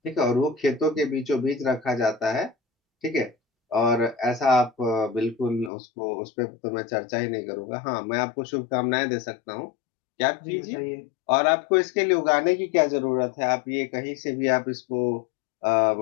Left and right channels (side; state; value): right; drops out; at 5.7 s